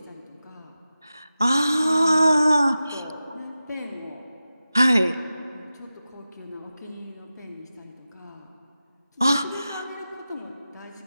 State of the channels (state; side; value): inverted; both; correlation -0.93